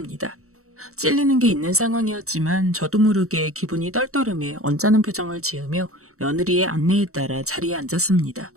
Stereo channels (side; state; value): left; late; 0.64 ms